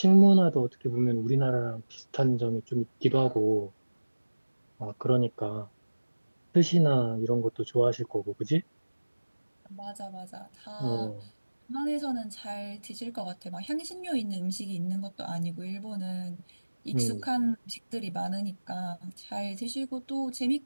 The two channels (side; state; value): both; inverted; correlation -1.00